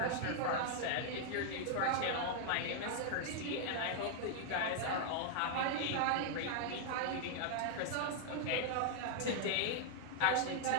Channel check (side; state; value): both; different; correlation 0.00